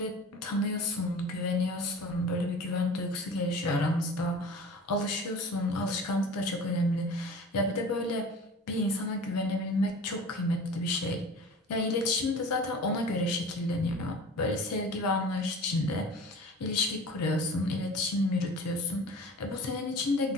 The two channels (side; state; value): both; normal; correlation 0.40